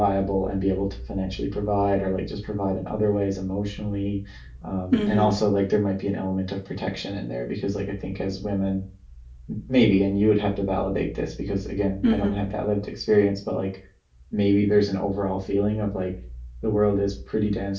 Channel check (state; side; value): identical; both; correlation 1.00